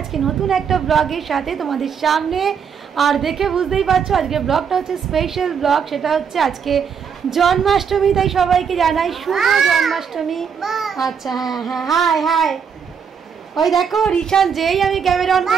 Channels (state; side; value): quieter; left; 6.9 dB